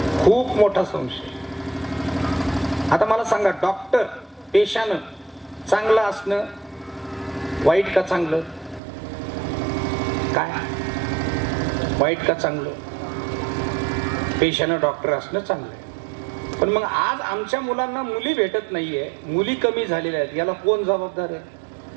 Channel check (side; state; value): left; drops out; at 8.8 s